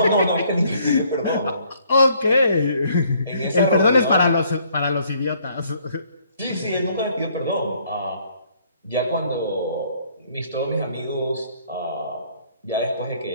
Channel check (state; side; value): inverted; both; correlation -0.64